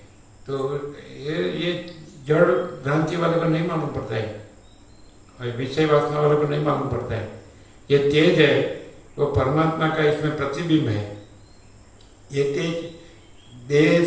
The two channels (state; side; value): identical; both; correlation 1.00